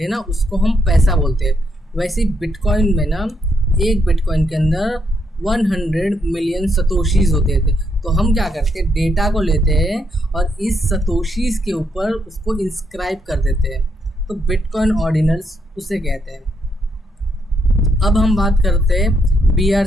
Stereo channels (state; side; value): normal; both; correlation 0.77